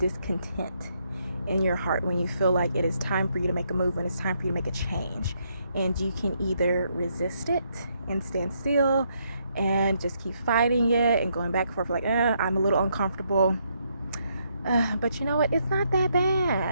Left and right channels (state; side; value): inverted; both; correlation -0.75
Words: in your heart when you feel like it is time for you to make a move, when it's time for you to make a change. And you can either resist it and stand still and just keep fighting it and going back and forth like, I'm a little uncomfortable. But you know what? It's not that